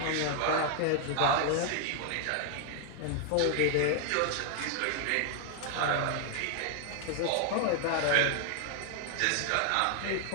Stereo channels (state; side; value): different; both; correlation 0.00